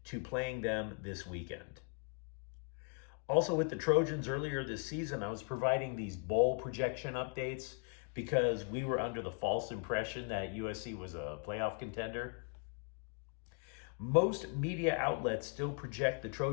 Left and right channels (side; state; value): right; quieter; 39.7 dB